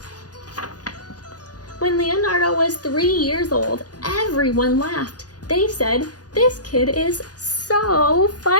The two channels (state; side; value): late; right; 0.68 ms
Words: When Leonardo was 3 years old, everyone laughed. They said, "This kid is so